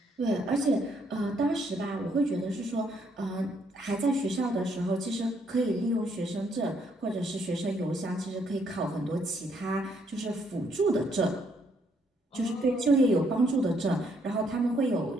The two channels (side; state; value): both; normal; correlation 0.71